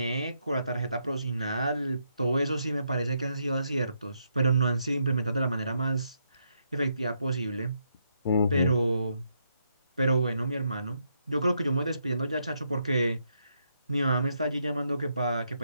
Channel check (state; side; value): inverted; both; correlation -0.78